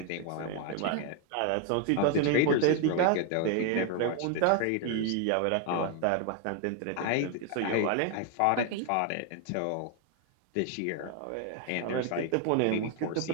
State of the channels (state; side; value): different; both; correlation 0.01